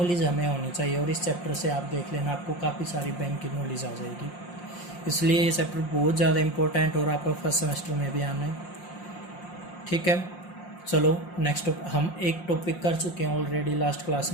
हमें होनी चाहिए। और इस चैप्टर से आप देख लेना, आपको काफ़ी सारी बैंक की नॉलेज आ जाएगी। इसलिए ये चैप्टर बहुत ज़्यादा इंपॉर्टेंट और आपका फर्स्ट सेमेस्टर में भी आना है। ठीक है, चलो नेक्स्ट हम एक टॉपिक कर चुके हैं ऑलरेडी लास्ट क्लास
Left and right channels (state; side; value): late; right; 5.7 ms